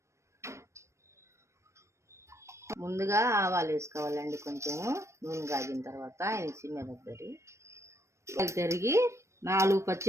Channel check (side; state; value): left; late; 0.14 ms